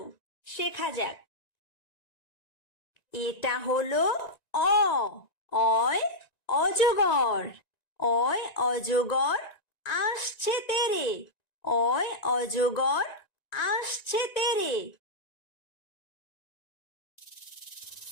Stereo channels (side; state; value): right; late; 1.9 ms